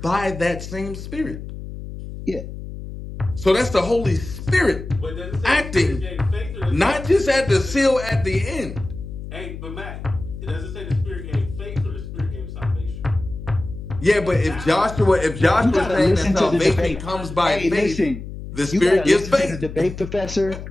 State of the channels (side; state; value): left; noise; hum, 10 dB below the sound